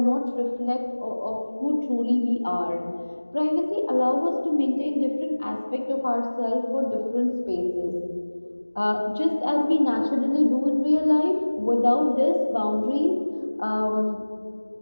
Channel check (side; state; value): both; inverted; correlation -1.00